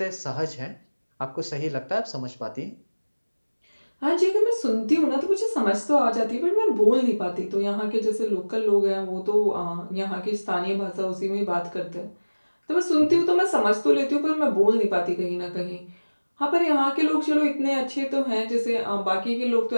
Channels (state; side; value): inverted; both; correlation -1.00